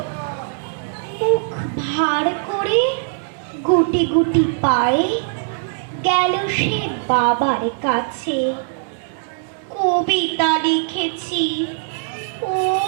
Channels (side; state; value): left; silent; digital silence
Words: মুখ ভার করে গুটি গুটি পায়ে গেল সে বাবার কাছে। কবিতা লিখেছি ও